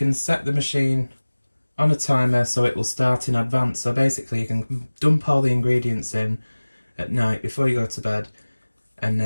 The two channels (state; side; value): inverted; both; correlation -1.00